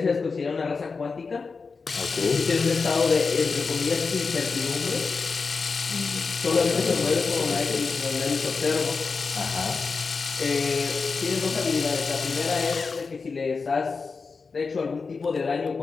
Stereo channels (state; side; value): quieter; right; 4.7 dB